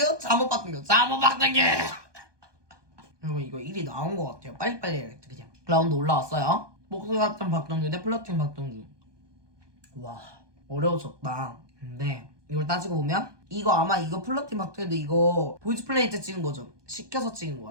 잠옷 박동규. 여러분 이거 1위 나온 것 같아요. 빨리빨리 해야겠다 그냥. 라운드 올라왔어요. 목소리 같은 박동규 대 플러팅 박동규. 와 어려워졌다. 근데 이걸 따지고 보면 이거 아마 이거 플러팅 박동규도 이거 보이즈 플레이 때 찍은 거죠. 시켜서 찍은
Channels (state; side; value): late; left; 1.2 ms